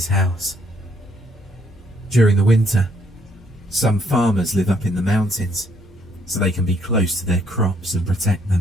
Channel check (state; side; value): normal; both; correlation 0.68